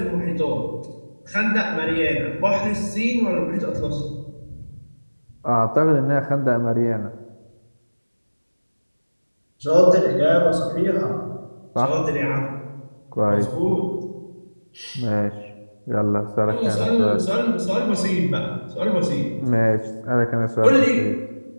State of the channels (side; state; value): both; inverted; correlation -1.00